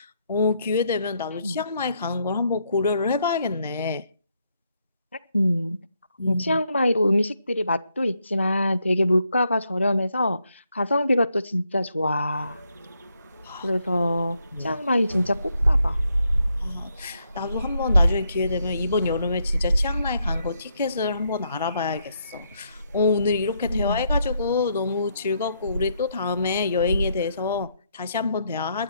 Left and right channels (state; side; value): inverted; both; correlation -0.76